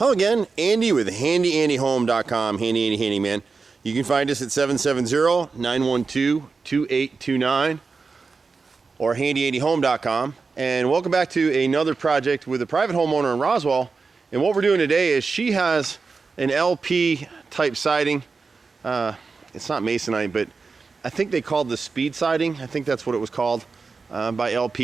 again, Andy with HandyANDYHome.com, Handy Andy Handyman. You can find us at 770-912-2829 or HandyANDYHome.com. And welcome back to another project with a private homeowner in Roswell. And what we're doing today is she has an LP type siding. It's not masonite, but I think they called the speed siding. I think that's what it was called by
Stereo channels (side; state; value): left; quieter; 4.5 dB